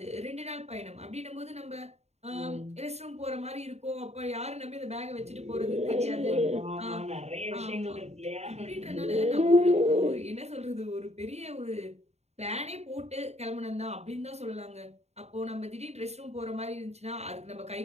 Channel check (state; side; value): late; left; 0.31 ms